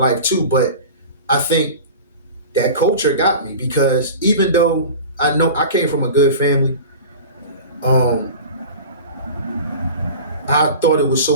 too, but I think that culture got me because even though I know I came from a good family, um, I thought it was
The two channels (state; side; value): inverted; both; correlation -0.35